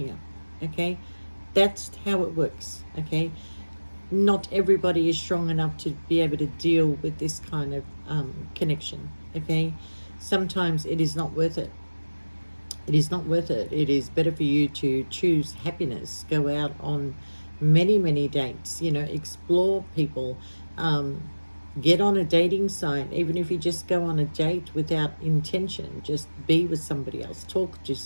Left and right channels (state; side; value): inverted; both; correlation -1.00